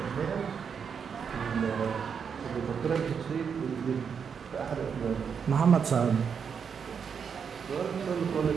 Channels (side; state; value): left; quieter; 6.7 dB